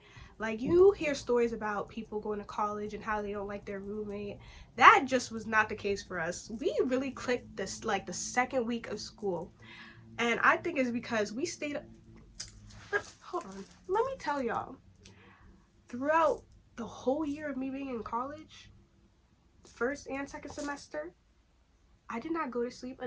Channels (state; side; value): identical; both; correlation 1.00